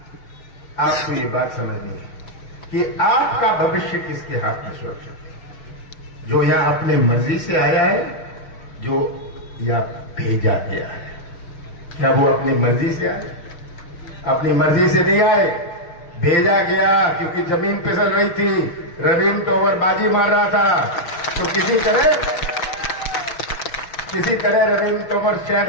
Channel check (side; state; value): right; late; 6.3 ms